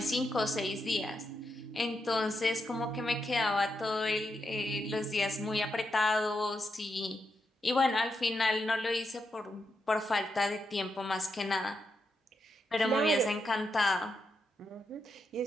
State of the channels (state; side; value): normal; both; correlation 0.84